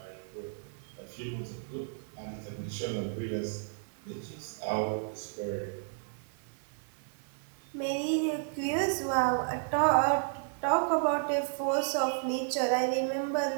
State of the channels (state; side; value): silent; left; 55 dB below the other